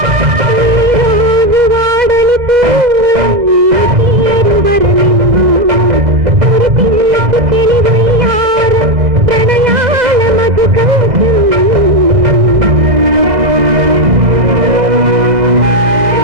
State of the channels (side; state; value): left; late; 1.6 ms